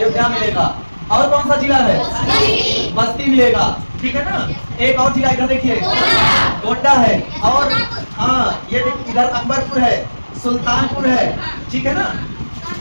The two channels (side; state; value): both; inverted; correlation -1.00